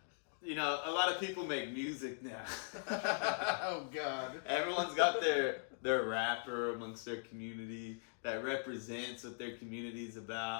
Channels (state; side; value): silent; right; digital silence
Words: You know, a lot of people make music now. Oh God. Everyone's got their rapper amongst their community that represents what their community's